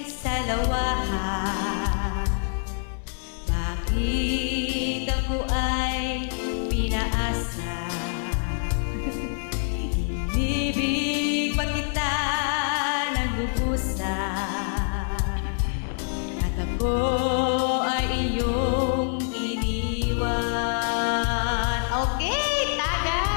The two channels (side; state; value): right; silent; 61 dB below the other